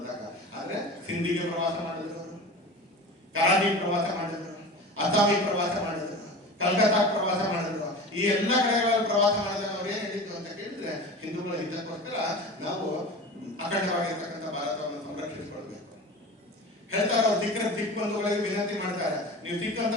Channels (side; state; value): both; normal; correlation 0.33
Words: ಆದ್ರೆ ಸಿಂಧಿಗೆ ಪ್ರವಾಸ ಮಾಡಿದ್ರು, ಕರಾಚಿಗೆ ಪ್ರವಾಸ ಮಾಡಿದ್ರು, ಅಸ್ಸಾಮಿಗೆ ಪ್ರವಾಸ ಮಾಡಿದ್ರು, ಕಲ್ಕತ್ತಾಕ್ಕೆ ಪ್ರವಾಸ ಮಾಡಿದ್ರು. ಈ ಎಲ್ಲ ಕಡೆಗಳಲ್ಲಿ ಪ್ರವಾಸ ಮಾಡಿದಾಗ ಅವ್ರು ಏನ್ ಹೇಳಿದ್ದು ಅಂತ ಕೇಳಿದ್ರೆ, ಹಿಂದೂಗಳ ಹಿತಕ್ಕೋಸ್ಕರ ನಾವು ಅಖಂಡವಾಗಿರ್ತಕ್ಕಂಥ ಭಾರತವನ್ನು ಸಂರಕ್ಷಿಸಿಕೊಳ್ಬೇಕು ಹೇಳ್ತಾರೆ. ಅವ್ರು ಸಿಖ್ ಬಂಧುಗಳಿಗೆ ವಿನಂತಿ ಮಾಡ್ತಾರೆ, ನೀವು ಸಿಖ್ ಅಂತ